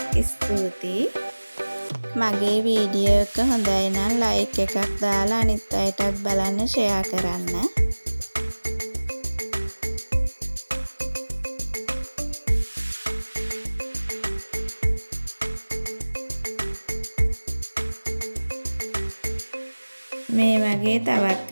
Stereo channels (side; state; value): both; inverted; correlation -1.00